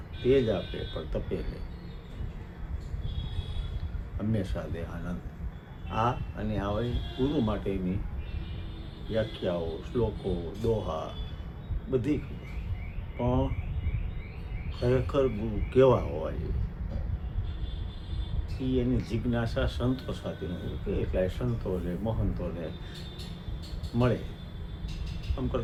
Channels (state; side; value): identical; both; correlation 1.00